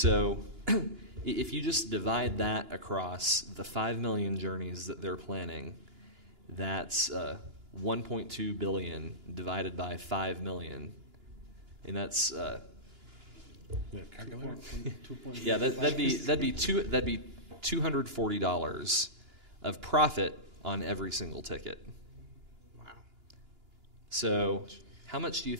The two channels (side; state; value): left; late; 2.9 ms